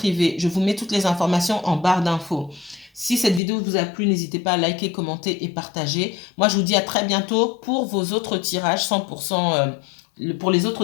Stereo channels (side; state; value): right; drops out; at 3.4 s